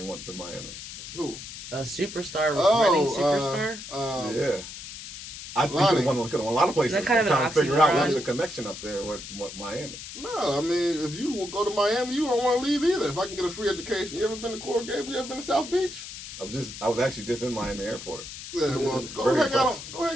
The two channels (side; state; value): left; noise; hiss, 11 dB below the sound